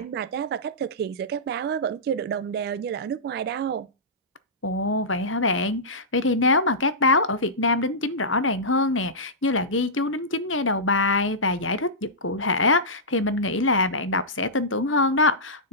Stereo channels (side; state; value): both; normal; correlation -0.16